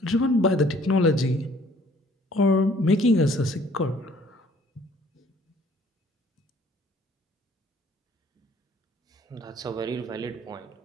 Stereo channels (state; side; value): normal; both; correlation 0.58